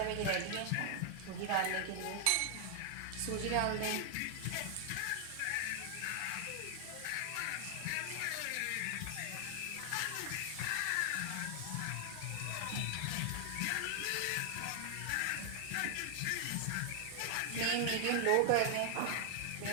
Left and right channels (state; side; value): different; both; correlation 0.00